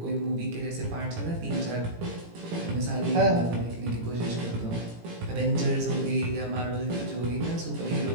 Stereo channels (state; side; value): late; left; 18 ms